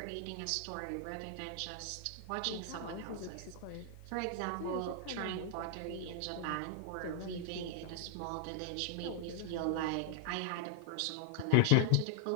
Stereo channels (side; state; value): both; different; correlation 0.00